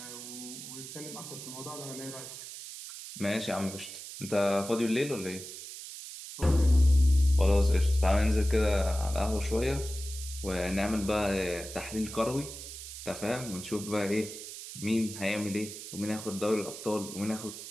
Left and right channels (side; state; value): right; noise; hiss, 11 dB below the sound